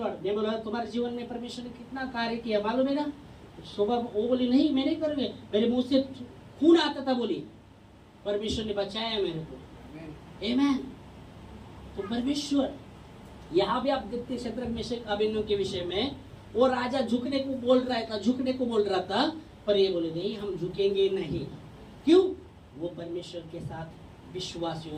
मैं बोला तुम्हारे जीवन में परमेश्वर ने कितना कार्य किया मालूम है ना? सुबह वो बोली नहीं मैं नहीं करूंगी, मेरे मुंह से खून आता था, बोली परमेश्वर ने बचाया मेरे को। आमेन। तो परमेश्वर, यहाँ भी आप देखते शत्रक मेशक अबेदनगो के विषय में, वो राजा झुकने को बोल रहा था, पर ये बोले नहीं हम झुकेंगे नहीं। क्यों? वो परमेश्वर के साथ विश्वास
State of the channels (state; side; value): identical; both; correlation 1.00